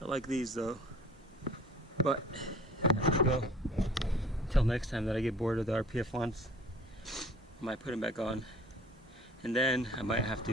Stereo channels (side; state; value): both; normal; correlation 0.49